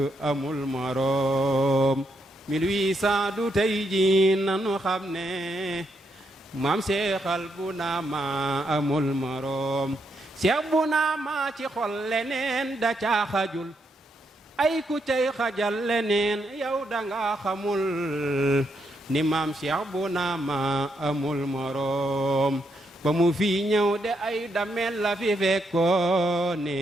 amul moroom 1800 du tey ji nanu xam ne maam Cheikhal bu naama amul moroom Cheikh bu naama ci xol leneen da caa xajul ay ku cay xajal leneen yow danga xamul ni maam Cheikh bu naama amul moroom ba mu fi ñëw de ay damel la fi fekkoone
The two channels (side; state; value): both; normal; correlation 0.79